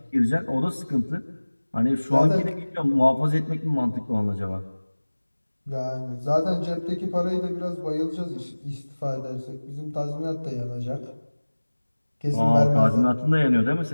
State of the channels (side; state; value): both; inverted; correlation -1.00